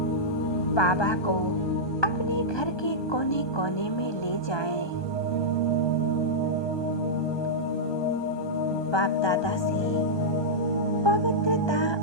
बाबा को अपने घर के कोने कोने में ले जाएं। बाप दादा से पवित्रता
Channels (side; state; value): right; late; 1.2 ms